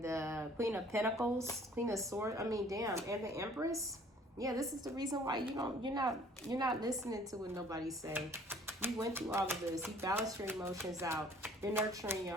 the Queen of Pentacles, Queen of Swords. I mean, damn, and the Empress. Yeah, this is the reason why you're not listening to what nobody say. You went through all of this. You balanced your emotions out. You're nurturing your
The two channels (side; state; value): both; normal; correlation 0.54